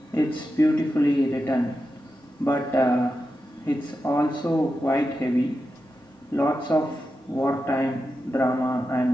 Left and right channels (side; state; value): both; normal; correlation 0.90